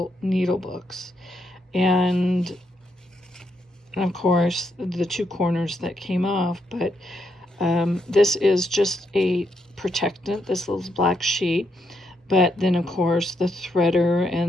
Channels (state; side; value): normal; both; correlation 0.78